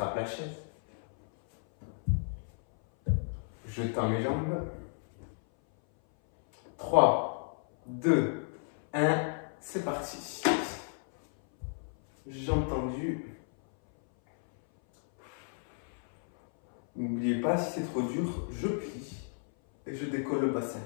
la chaise. Je tends mes jambes. 3, 2, 1, c'est parti. Jambes tendues. N'oubliez pas, si c'est trop dur, je plie et je décolle le bassin.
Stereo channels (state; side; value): silent; right; 56 dB below the other